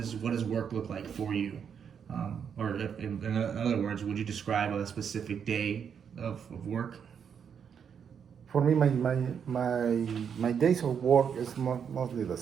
work look like for you? Or in other words, would you describe a specific day of work? For me, my days of work is mostly the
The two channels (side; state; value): left; quieter; 7.4 dB